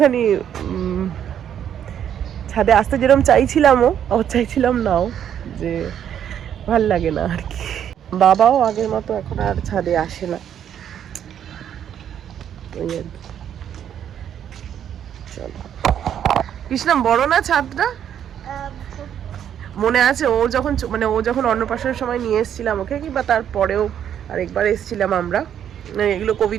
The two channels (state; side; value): quieter; left; 9.5 dB